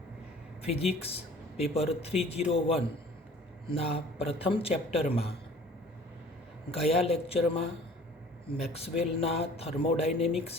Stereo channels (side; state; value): both; normal; correlation 0.49